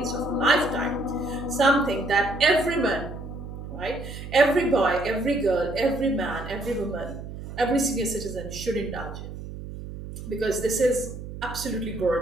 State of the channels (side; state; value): right; noise; hum, 10 dB below the sound